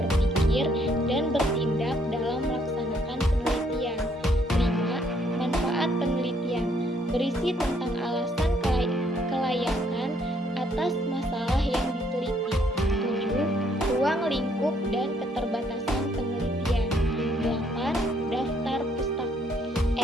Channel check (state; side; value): normal; both; correlation 0.68